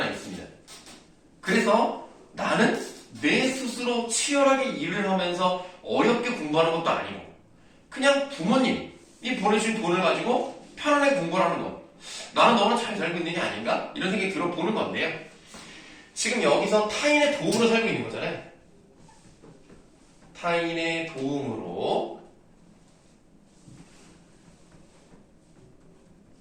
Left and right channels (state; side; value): identical; both; correlation 1.00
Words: 있습니다. 그래서 나는 내 스스로 치열하게 일을 하면서 어렵게 공부하는 것도 아니고 그냥 부모님이 보내주신 돈을 가지고 편안하게 공부를 하는 것. 나는 너무나 잘 살고 있는 게 아닌가? 이런 생각이 들어보는 건데요. 지금 여기서 타인의 도움으로 살고 있는 거잖아요. 타인의 도움으로